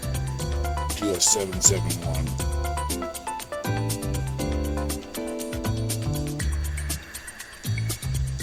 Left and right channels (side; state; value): both; identical; correlation 1.00